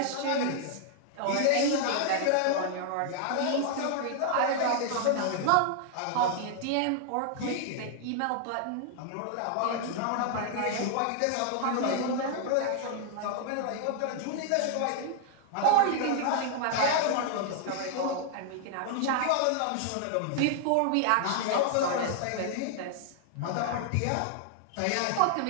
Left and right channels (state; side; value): different; both; correlation 0.00